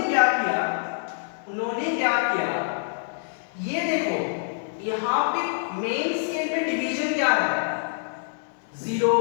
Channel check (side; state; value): right; silent; digital silence